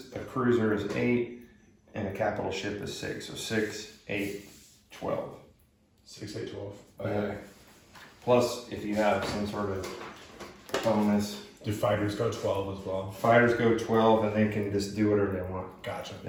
a cruiser is 8, and a capital ship is 6. So 6, 8, 12. 6, 8, 12. Okay. Plus, if you have some sort of bonus, Do fighters go 12 as well? fighters go 12 and they can just do whatever they want. Gotcha.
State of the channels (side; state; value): both; identical; correlation 1.00